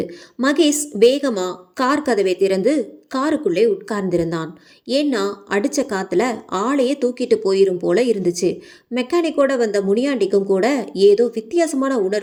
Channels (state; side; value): identical; both; correlation 1.00